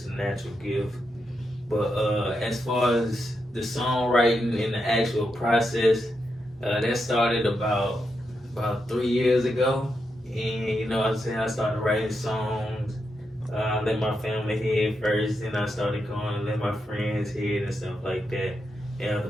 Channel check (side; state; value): both; normal; correlation 0.84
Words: a natural gift. But as far as the songwriting and the actual process, that started about 3 years ago. And you know what I'm saying? I started writing songs. Let my family hear it first, then I started going and let my friends hear it and stuff like that, and other